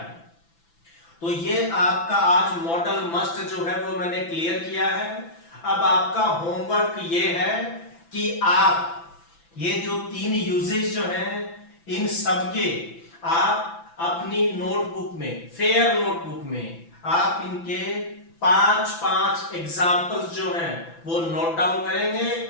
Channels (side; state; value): right; late; 6.0 ms